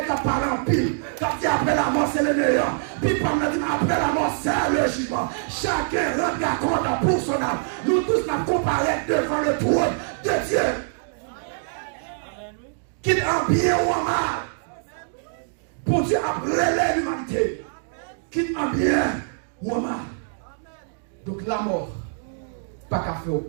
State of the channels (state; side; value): silent; left; digital silence